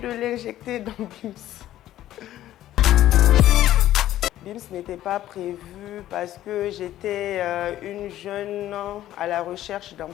l'injecter dans BIMS. BIMS n'était pas prévu parce que j'étais une jeune à la recherche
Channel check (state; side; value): quieter; right; 13.4 dB